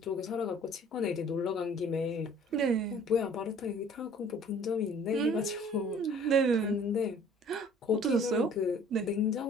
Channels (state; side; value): normal; both; correlation 0.52